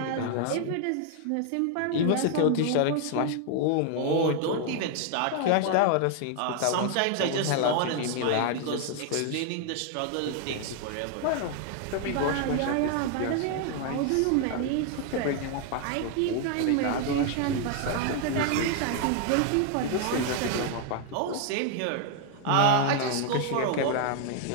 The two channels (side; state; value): both; different; correlation 0.00